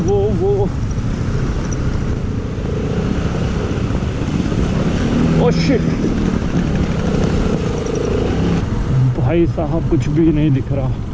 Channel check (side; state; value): both; identical; correlation 1.00